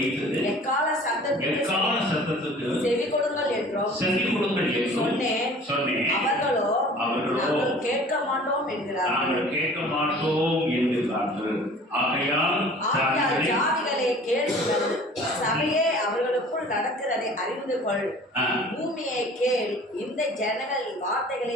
எக்கால சத்தத்துக்கு செவி கொடுங்கள் என்றும் சொன்னேன். அவர்களோ நாங்கள் கேட்க மாட்டோம் என்கிறார்கள். ஆகையால் ஜாதிகளே கேளுங்கள், சபையே அவர்களுக்குள் நடக்கிறதை அறிந்து கொள். பூமியை கேள், இந்த ஜனங்கள்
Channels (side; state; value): both; normal; correlation 0.46